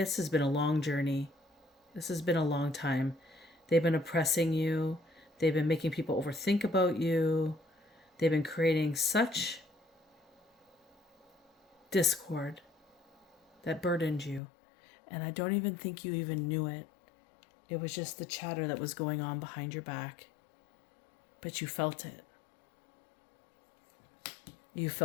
has been a long journey. This has been a long time. They've been oppressing you. They've been making people overthink about you. They've been creating such discord that burdened you. And I don't even think you even knew it. It was just the chatter that was going on behind your back. But you felt it. You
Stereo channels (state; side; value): drops out; right; at 14.4 s